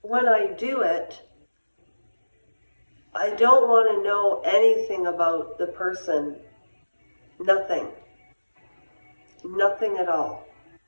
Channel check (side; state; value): both; inverted; correlation -1.00